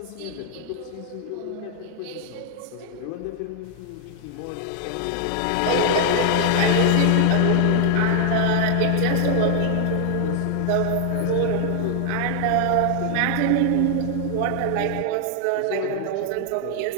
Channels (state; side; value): different; both; correlation 0.00